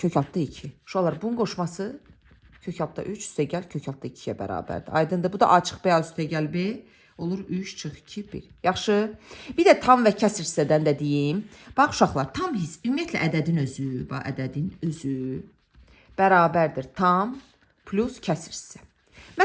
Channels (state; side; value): identical; both; correlation 1.00